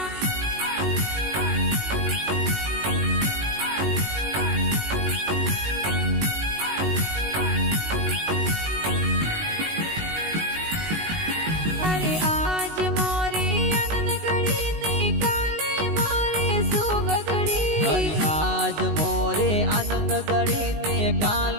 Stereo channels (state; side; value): late; left; 19 ms